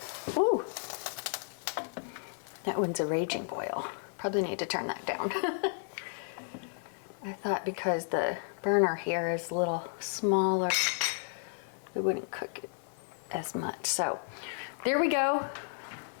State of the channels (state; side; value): silent; right; 56 dB below the other